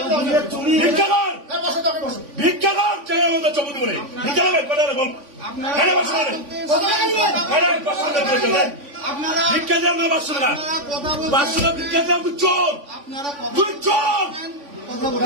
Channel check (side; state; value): left; late; 3.5 ms